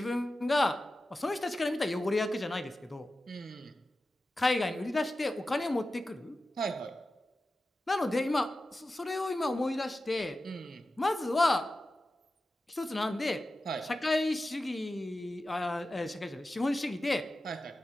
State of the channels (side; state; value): both; normal; correlation 0.93